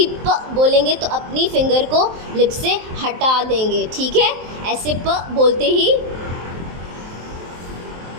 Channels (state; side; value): late; left; 23 ms